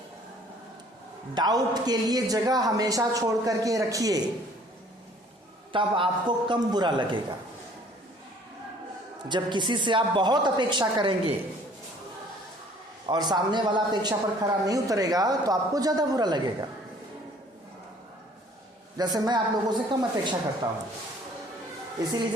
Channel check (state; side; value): normal; both; correlation 0.55